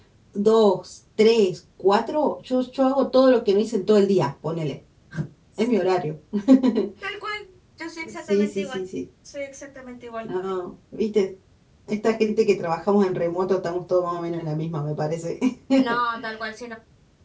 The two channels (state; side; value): identical; both; correlation 1.00